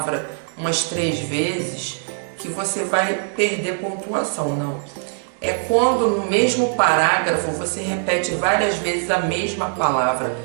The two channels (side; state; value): left; silent; 65 dB below the other